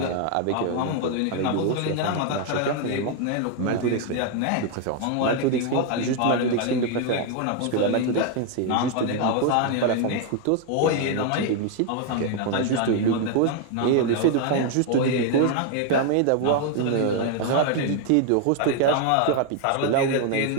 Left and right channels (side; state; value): both; different; correlation 0.00